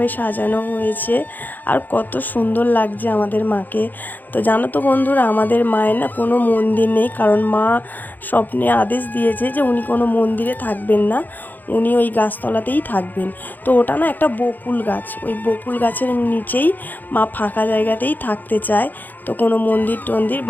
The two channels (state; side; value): late; right; 0.086 ms